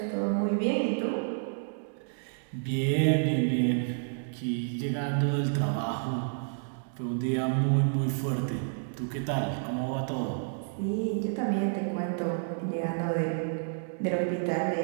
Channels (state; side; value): silent; left; digital silence